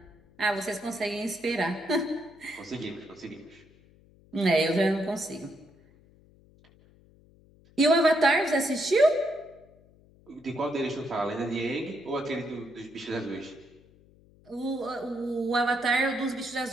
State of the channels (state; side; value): noise; left; hum, 28 dB below the sound